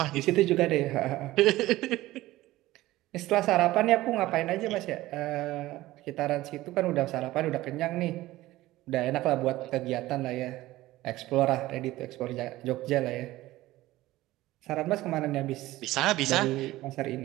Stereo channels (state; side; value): quieter; left; 17.0 dB